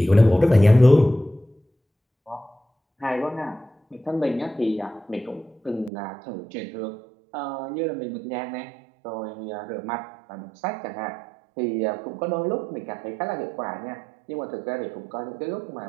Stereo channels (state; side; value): drops out; left; at 5.9 s